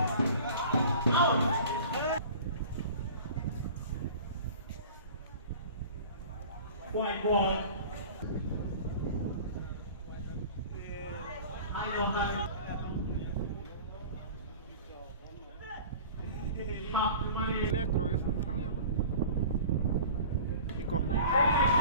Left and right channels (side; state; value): both; inverted; correlation -0.41